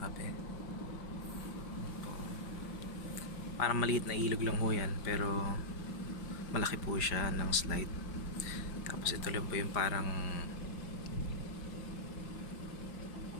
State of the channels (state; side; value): late; right; 4.9 ms